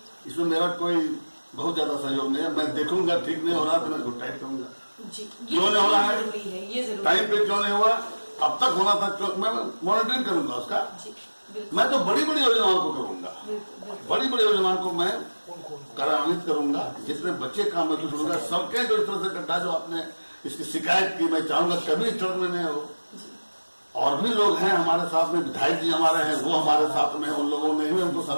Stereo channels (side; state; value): both; inverted; correlation -1.00